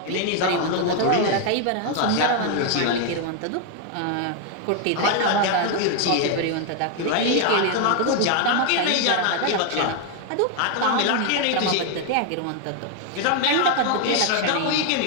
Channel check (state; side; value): different; both; correlation 0.00